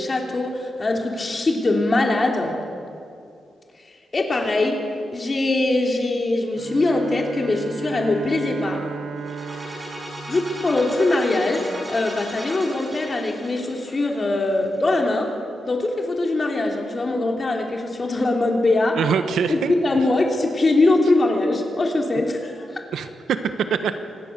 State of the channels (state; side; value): normal; both; correlation 0.88